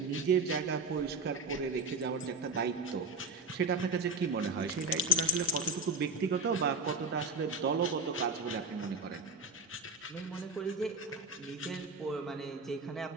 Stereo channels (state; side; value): quieter; left; 3.1 dB